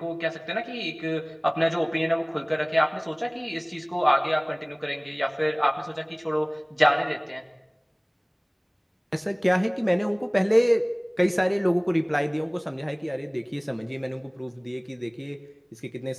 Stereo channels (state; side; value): identical; both; correlation 1.00